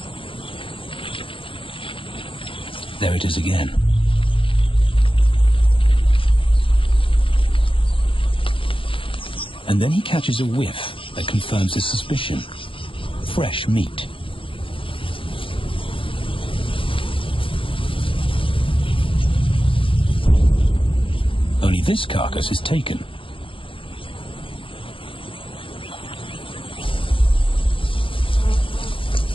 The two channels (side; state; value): right; late; 0.25 ms